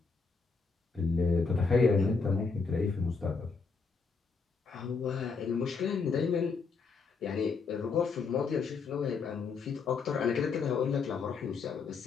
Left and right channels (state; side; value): quieter; right; 4.9 dB